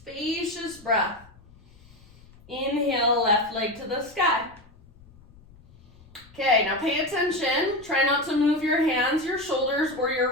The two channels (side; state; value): left; noise; rumble, 26 dB below the sound